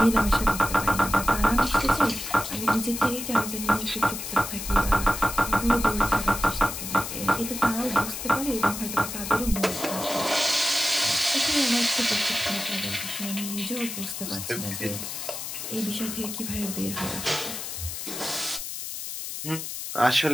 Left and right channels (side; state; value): left; noise; hiss, 7 dB below the sound